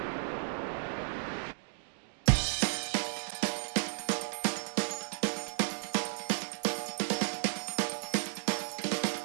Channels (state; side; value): silent; left; digital silence